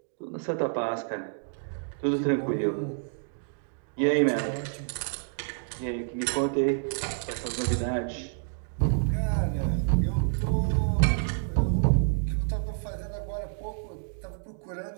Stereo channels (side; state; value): left; silent; digital silence